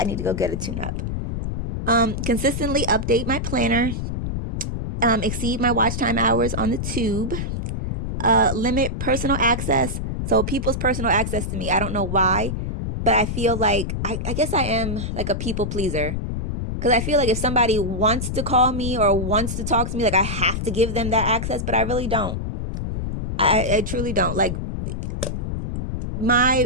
need to go get a tune-up. Consistently update my planner. Exceed my watch time hours on the tube. Limit personal access. So people's personal access to me, I don't know why, but I feel like, I guess I am like a people pleaser. Because I feel like if somebody wants to call me or wants to talk to me, like I have to give them that access, but I really don't. I truly don't. Like my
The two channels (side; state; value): left; noise; rumble, 3 dB below the sound